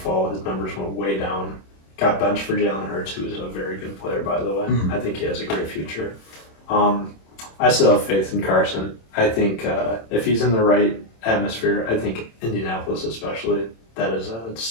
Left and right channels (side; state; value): right; late; 27 ms